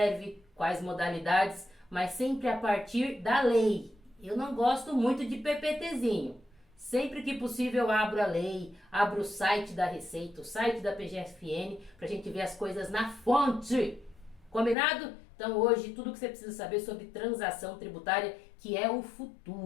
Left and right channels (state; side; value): drops out; right; at 14.8 s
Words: quais modalidades, mas sempre a partir da lei. Eu não gosto muito de PPTzinho. Sempre que possível eu abro a lei, abro o site da Receita, o site da PGFN, para a gente ver as coisas na fonte. Combinado? Então hoje tudo que você precisa saber sobre transação tributária, que é o